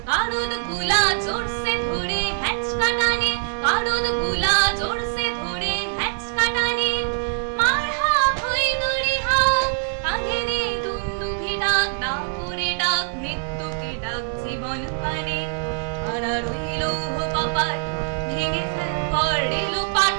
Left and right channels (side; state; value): left; silent; digital silence